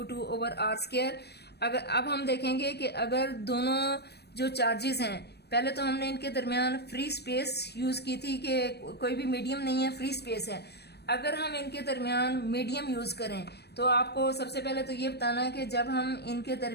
over r square. अगर अब हम देखेंगे कि अगर दोनों जो चार्जेस हैं पहले तो हमने इनके दरमियान फ्री स्पेस यूज की थी कि कोई भी मीडियम नहीं है फ्री स्पेस है। अगर हम इनके दरमियान मीडियम यूज करें तो आपको सबसे पहले तो ये बताना है कि जब हम इनके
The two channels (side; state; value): right; late; 0.48 ms